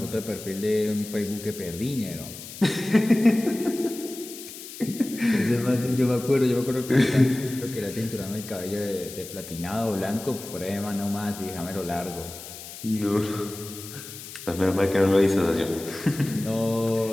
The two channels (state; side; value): noise; left; hiss, 13 dB below the sound